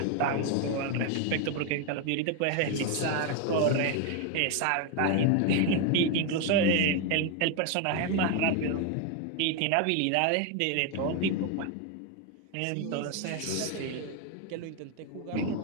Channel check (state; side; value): different; both; correlation 0.01